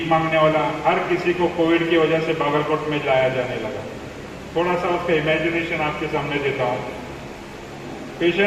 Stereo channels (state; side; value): identical; both; correlation 1.00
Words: مانگنے والا، ہر کسی کو کووڈ کی وجہ سے باگلکوٹ میں لایا جانے لگا۔ تھوڑا سا اس کا امیجنیشن آپ کے سامنے دیتا ہوں۔